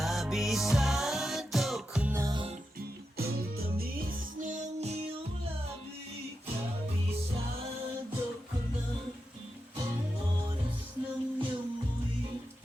ko na ang tamis ng iyong labi. Kabisado ko na ang oras ng iyong muwi.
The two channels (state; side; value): normal; both; correlation 0.88